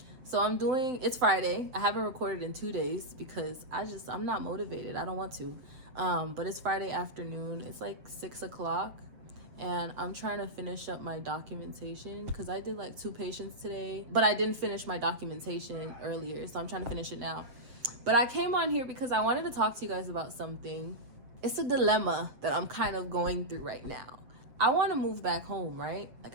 so it's Friday. I haven't recorded in 2 days because I'm not motivated. I don't want to. But it's Friday afternoon. It's like 6 o'clock. And I'm trying to finish up my documentation because I did like 2 patients today. But I didn't finish my documentation earlier. So I'm trying to finish it now. But I came on here because I wanted to talk to you guys about something. It's a dilemma that I'm kind of going through right now. I want to move back home, right?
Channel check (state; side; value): late; left; 8.0 ms